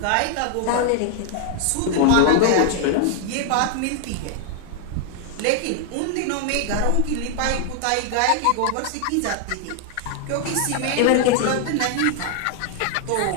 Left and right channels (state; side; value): different; both; correlation 0.00